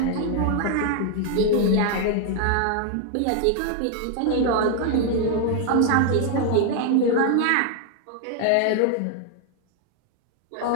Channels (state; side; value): different; both; correlation 0.00